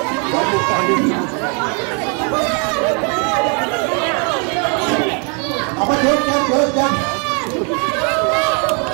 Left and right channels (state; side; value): quieter; left; 36.8 dB